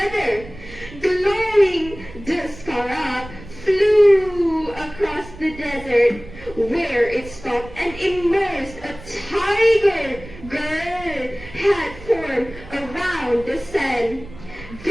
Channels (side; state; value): right; noise; rumble, 16 dB below the sound